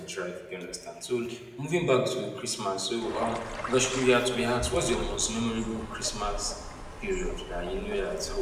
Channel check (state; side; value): identical; both; correlation 1.00